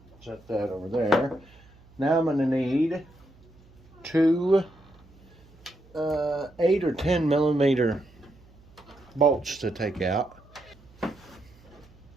Set that over there. Now I'm going to need two 8 or 10 millimeter bolts to take out.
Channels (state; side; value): noise; right; hum, 26 dB below the sound